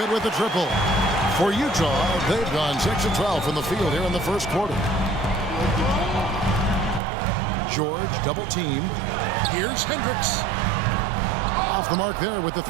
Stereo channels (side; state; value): left; drops out; at 7.0 s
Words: with the triple. For Utah, they've gone 6 of 12 from the field here in the first quarter. George double team. Here's Hendricks. Off the mark there with the